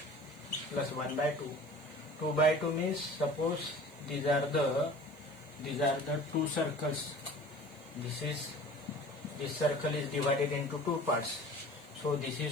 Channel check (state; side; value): noise; right; hiss, 27 dB below the sound